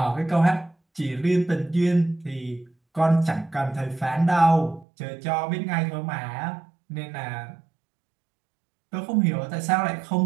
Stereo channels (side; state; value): left; drops out; at 4.9 s